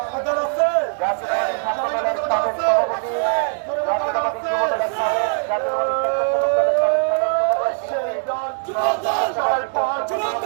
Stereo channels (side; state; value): left; silent; digital silence